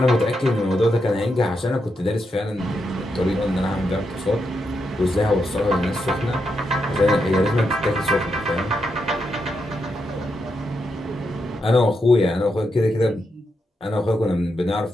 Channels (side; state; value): both; normal; correlation 0.83